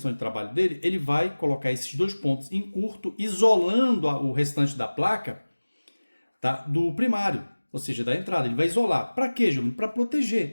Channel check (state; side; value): inverted; both; correlation -1.00